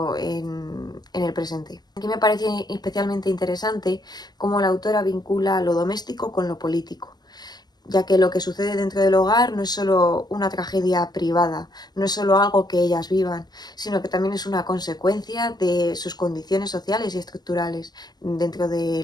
en el presente. Aquí me parece especialmente interesante cómo la autora vincula lo doméstico con lo político, ya que lo que sucede dentro del hogar no es solo una tragedia privada, no es solo algo que ellas vivan, sino que también es una consecuencia de sus condiciones sociales y estructurales dentro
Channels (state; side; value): late; right; 0.19 ms